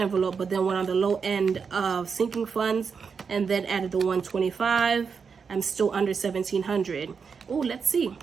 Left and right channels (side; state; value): left; quieter; 5.9 dB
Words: but then went on the low end of sinking funds and then added the 125, I'm still under $1,700. Oh, let's see.